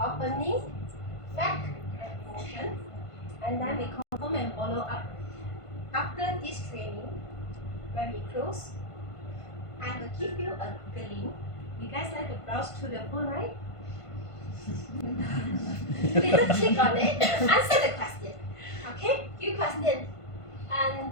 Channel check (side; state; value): right; late; 1.5 ms